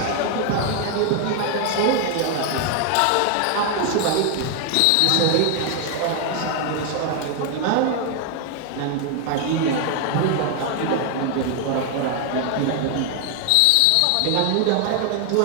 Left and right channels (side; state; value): both; different; correlation 0.00